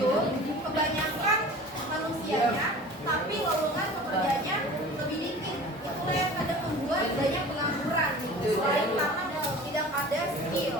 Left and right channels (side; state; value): both; normal; correlation 0.41